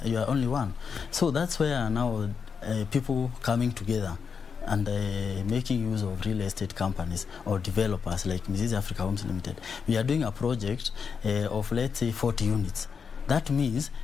one. So that's where now people coming together and making use of real estate companies or developers like Mizizi Africa Homes Limited. We are doing a project of, let's say, 40 units. That means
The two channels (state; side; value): quieter; right; 6.1 dB